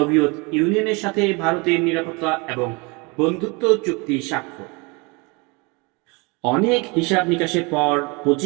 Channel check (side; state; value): left; quieter; 28.7 dB